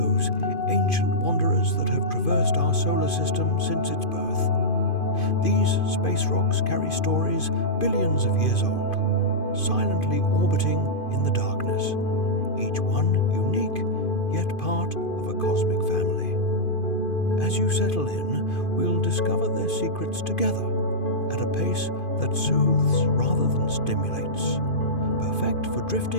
ancient wanderers that have traversed our solar system since its birth. These space rocks carry stories billions of years old, silently orbiting in the darkness, each one unique, yet part of a cosmic family. As you settle in, we'll discover their secrets together, at a pace that soothes rather than stimulates, perfect for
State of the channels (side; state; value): right; late; 2.5 ms